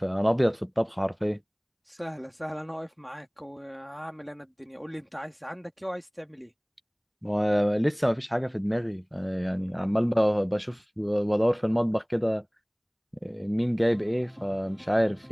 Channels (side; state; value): both; identical; correlation 1.00